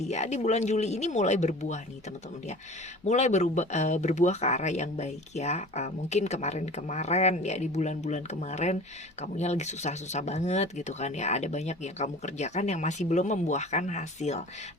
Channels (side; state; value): both; normal; correlation 0.41